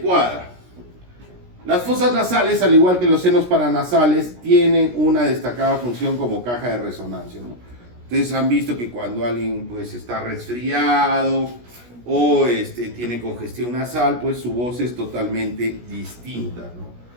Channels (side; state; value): left; late; 17 ms